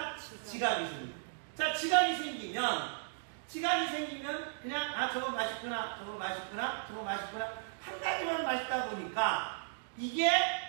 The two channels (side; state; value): left; silent; digital silence